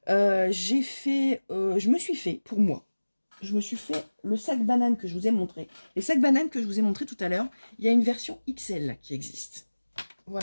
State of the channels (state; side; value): inverted; both; correlation -1.00